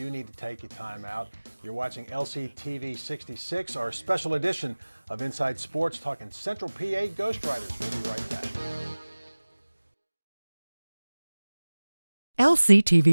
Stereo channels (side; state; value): both; inverted; correlation -1.00